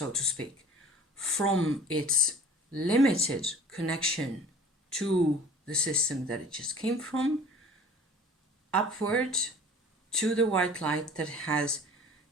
to speak, from its limited connection to the system that it just came from, upward to the white light that has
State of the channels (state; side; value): normal; both; correlation 0.46